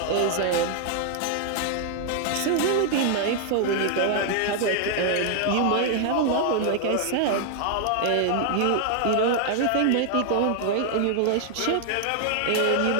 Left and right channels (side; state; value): both; different; correlation 0.00